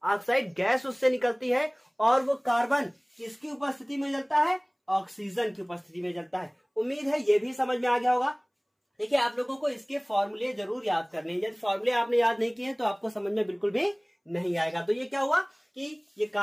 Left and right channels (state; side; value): identical; both; correlation 1.00